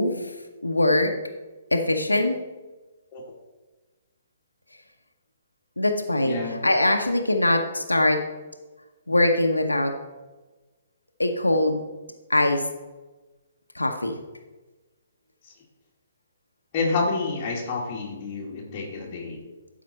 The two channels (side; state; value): both; inverted; correlation -0.82